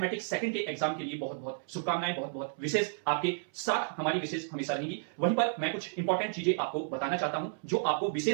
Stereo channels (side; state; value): left; silent; 56 dB below the other